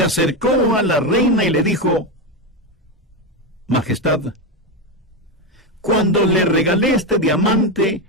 acercó a la reina y le dijo: Majestad, cuando le regalé este diamante,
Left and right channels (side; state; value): both; normal; correlation 0.11